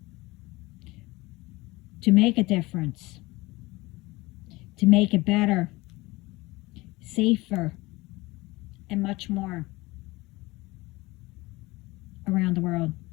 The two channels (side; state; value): right; quieter; 21.5 dB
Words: to make a difference, to make it better, safer, and much more around the world.